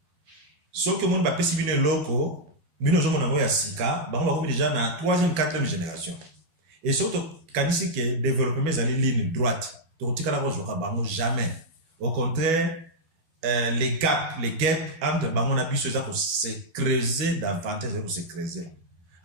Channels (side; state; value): left; late; 12 ms